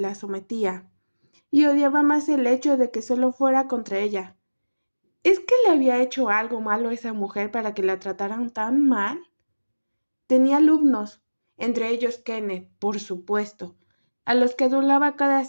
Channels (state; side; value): inverted; both; correlation -1.00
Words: sometía, y odiaba más el hecho de que solo fuera contra ella. ¿Es que le había hecho algo malo a esa mujer para que la trataran tan mal? Tenía alumnos, entre ellos Kenneth, por supuesto, a los que adulaba cada